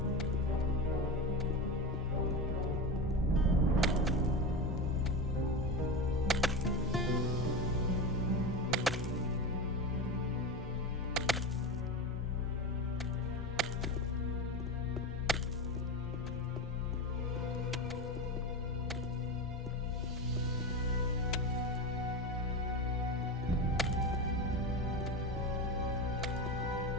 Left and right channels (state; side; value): normal; both; correlation 0.22